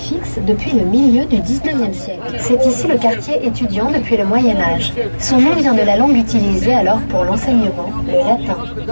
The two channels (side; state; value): both; inverted; correlation -1.00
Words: depuis le milieu du 19e siècle. C'est ici le quartier étudiant depuis le Moyen-Âge. Son nom vient de la langue utilisée alors pour l'enseignement, le latin.